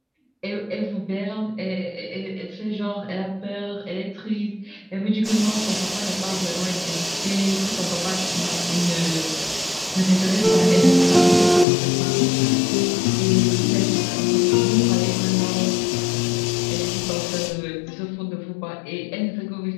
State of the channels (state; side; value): drops out; right; at 11.7 s